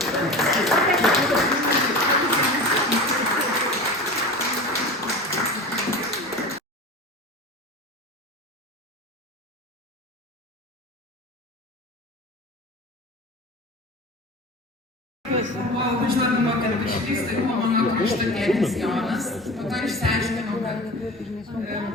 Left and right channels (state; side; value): normal; both; correlation 0.33